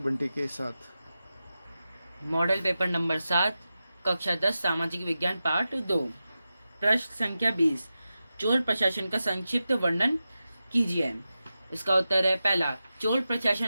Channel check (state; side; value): inverted; both; correlation -0.92